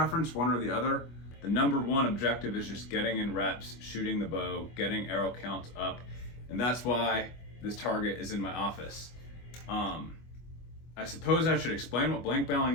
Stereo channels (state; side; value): late; right; 25 ms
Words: one or the other. The number one objective is just getting in reps, shooting the bow, getting arrow counts up, and that's why this target is in my office. I suppose I should explain what blank